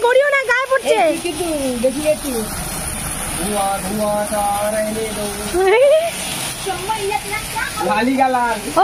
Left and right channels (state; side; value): identical; both; correlation 1.00